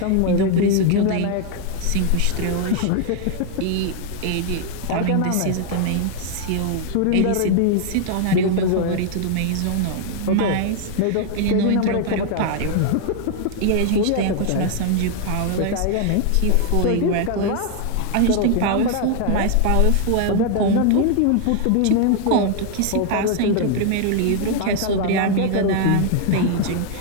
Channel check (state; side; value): different; both; correlation 0.00